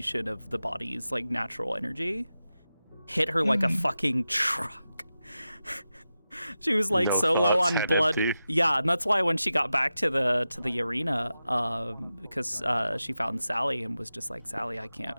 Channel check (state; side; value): inverted; both; correlation -0.92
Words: of the body's like natural energy hit her like a fucking truck. She was like No so low thoughts, on head blood. empty. Yeah, and that's why when she got back to the arena, because she found Sally and was just like, Sally, I